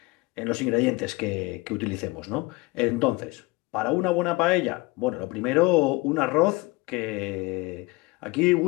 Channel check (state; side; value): quieter; right; 23.2 dB